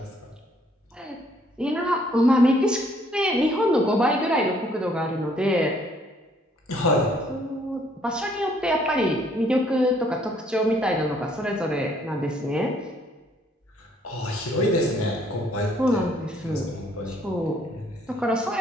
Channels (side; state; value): both; normal; correlation 0.64